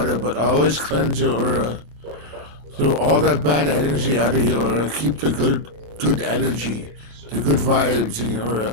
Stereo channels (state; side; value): late; left; 26 ms